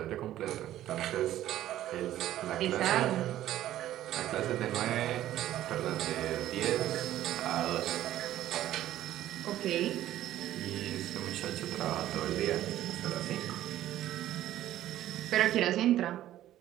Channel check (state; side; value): quieter; left; 13.2 dB